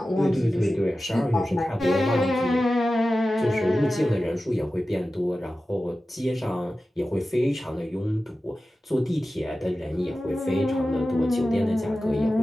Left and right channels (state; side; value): normal; both; correlation 0.94